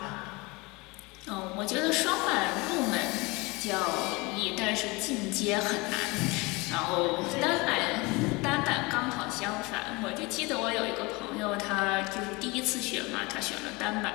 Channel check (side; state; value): right; quieter; 24.9 dB